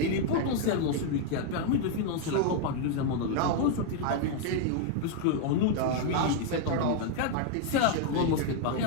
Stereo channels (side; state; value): both; different; correlation 0.00